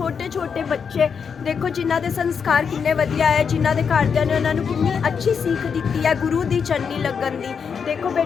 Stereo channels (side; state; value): right; quieter; 6.4 dB